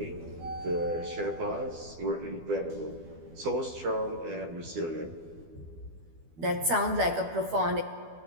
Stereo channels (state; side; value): late; left; 12 ms